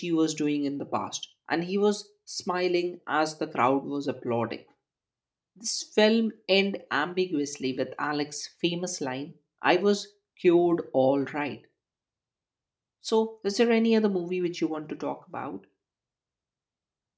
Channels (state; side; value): identical; both; correlation 1.00